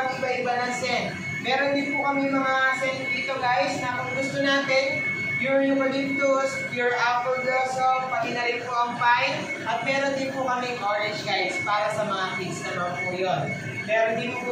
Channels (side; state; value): both; identical; correlation 1.00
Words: ng scent. Meron din po kami mga scent dito guys na kung gusto natin, pure eucalyptus, pure apple blossom, pati na rin po ang pine. At meron din po kaming orange guys para sa mga kids naman po yun. Meron din